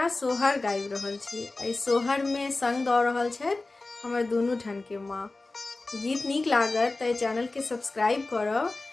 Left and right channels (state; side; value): quieter; right; 3.3 dB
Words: सोहर गाबि रहल छी। एहि सोहर में संग दऽ रहल छथि हमर दुनू ठन के माँ। गीत नीक लागत तऽ चैनल के सब्सक्राइब करब